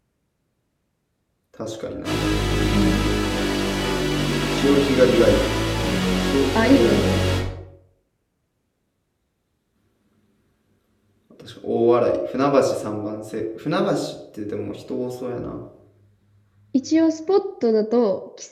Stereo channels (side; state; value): both; identical; correlation 1.00